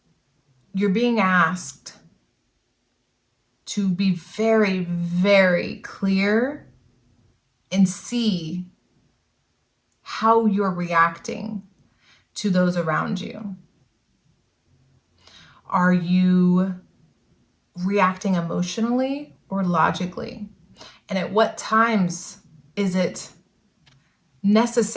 you're being asked to be very, very clear and see how you're reacting to those around you. Are you reacting emotionally or logically? And at what times is it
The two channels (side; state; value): both; identical; correlation 1.00